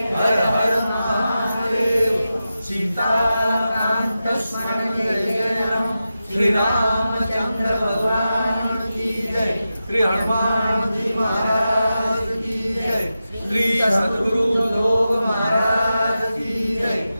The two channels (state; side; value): inverted; both; correlation -0.92